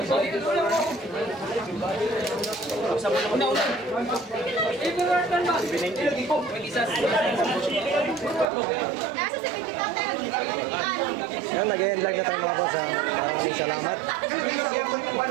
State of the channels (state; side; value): drops out; left; at 8.5 s